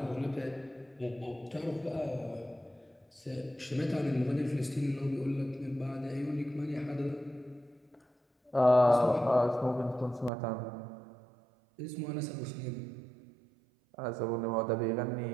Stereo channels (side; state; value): left; drops out; at 10.3 s